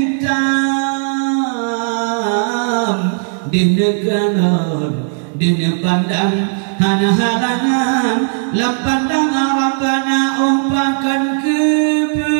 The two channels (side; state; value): left; silent; 63 dB below the other